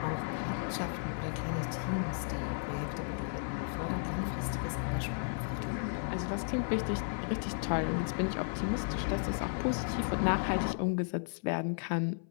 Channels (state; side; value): silent; right; 55 dB below the other